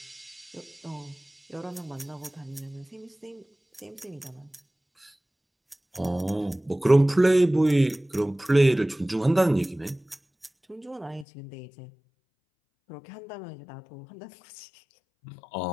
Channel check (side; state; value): right; drops out; at 11.2 s